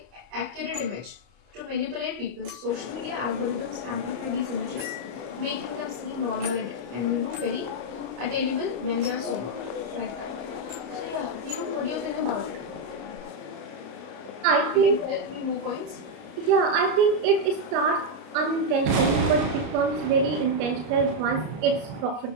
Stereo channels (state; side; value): late; left; 34 ms